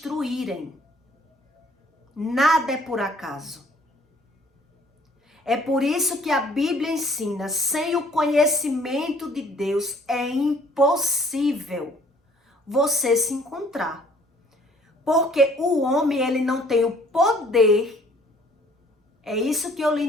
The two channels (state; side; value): normal; both; correlation 0.58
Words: Nada é por acaso. É por isso que a Bíblia ensina, sem o conhecimento de Deus é impossível você se encontrar. Porque o homem, ele não tem o poder, é isso que eu li